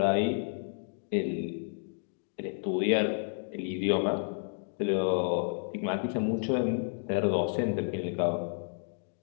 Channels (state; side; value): silent; right; 57 dB below the other